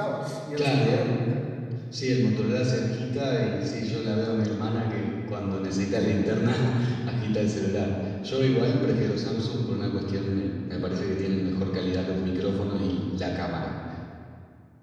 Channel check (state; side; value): identical; both; correlation 1.00